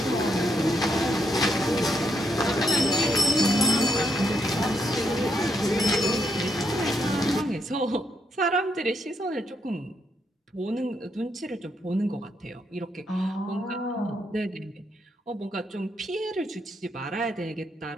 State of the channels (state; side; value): normal; both; correlation 0.77